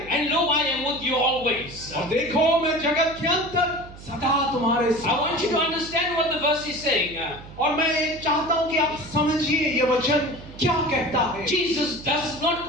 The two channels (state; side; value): noise; right; hum, 16 dB below the sound